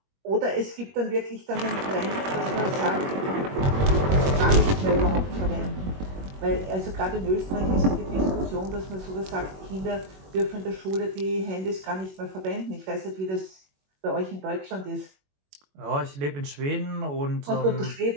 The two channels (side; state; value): left; late; 21 ms